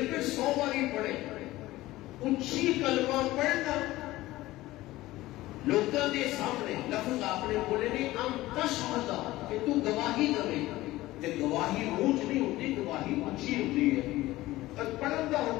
میں 100 باری پڑھے. اونچی کلمہ پڑھنا لوگوں کے سامنے لفظ آپ نے بولے نہیں ہم تشہد کہ تو گواہی دے, تے گواہی اونچ نہیں ہوتی, گواہی اونچی ہوتی ہے. اور پڑھن کا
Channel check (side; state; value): right; quieter; 17.4 dB